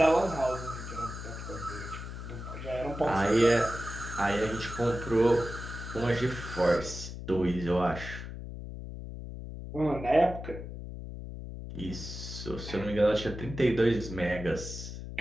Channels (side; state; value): left; noise; hum, 9 dB below the sound